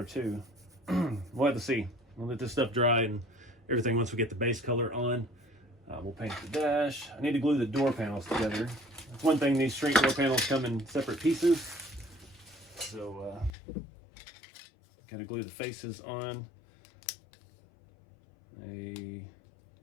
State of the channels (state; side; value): drops out; right; at 13.5 s